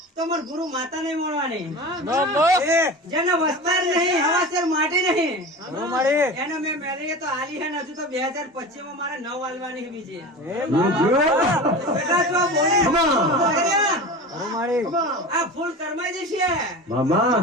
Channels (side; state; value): both; normal; correlation 0.31